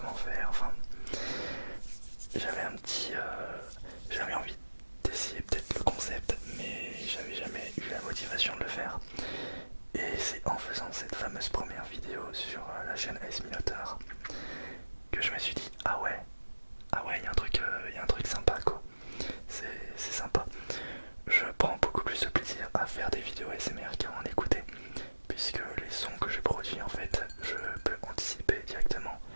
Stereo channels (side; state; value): both; inverted; correlation -1.00